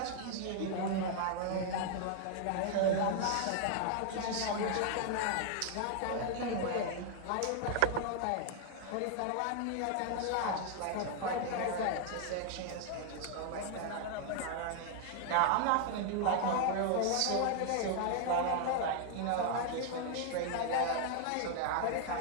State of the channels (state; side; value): different; both; correlation 0.00